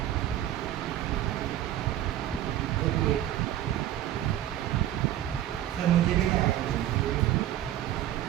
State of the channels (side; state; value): left; quieter; 12.6 dB